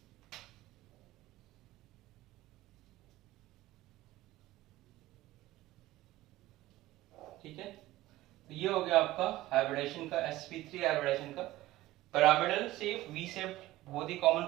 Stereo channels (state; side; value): quieter; left; 16.6 dB